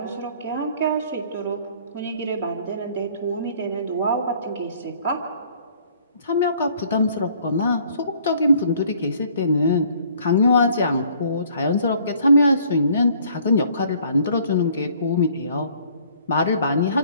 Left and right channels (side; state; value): both; inverted; correlation -0.58